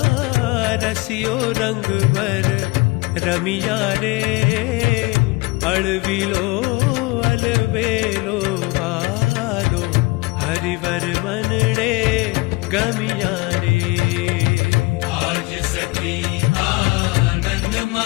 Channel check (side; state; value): right; quieter; 24.5 dB